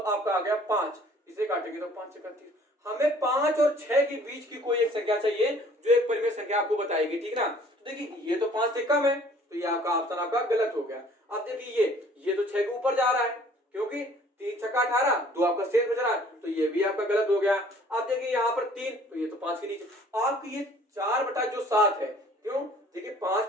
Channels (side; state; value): both; normal; correlation 0.55